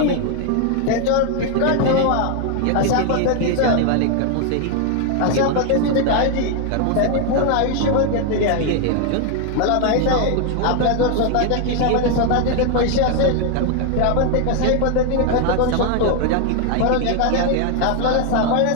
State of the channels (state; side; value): different; both; correlation 0.00